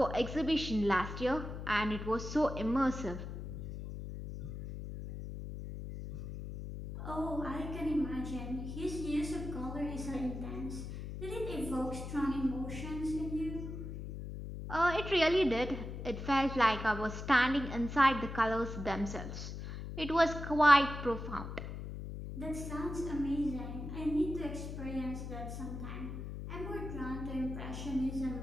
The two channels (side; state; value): left; noise; hum, 7 dB below the sound